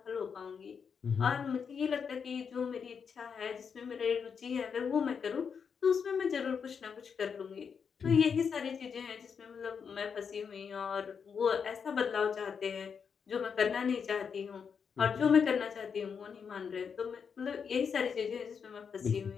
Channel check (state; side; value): quieter; right; 6.5 dB